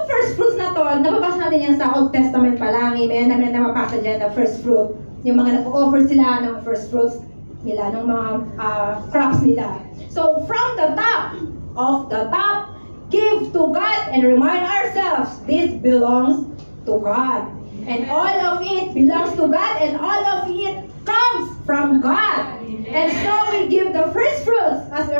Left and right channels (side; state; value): both; inverted; correlation -1.00